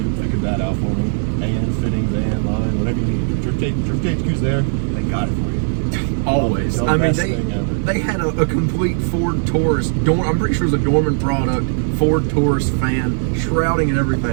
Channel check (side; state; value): left; silent; digital silence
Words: figured that out for me. And fittings, and line, whatever you need. Drift HQ's there, they got it for you. Always. The I mean, best thing ever. they had a complete Ford Taurus. I'm pretty sure it was a Dorman product. Ford Taurus fan, shrouding and